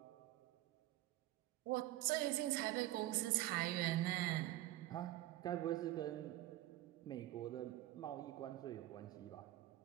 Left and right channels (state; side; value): quieter; left; 15.8 dB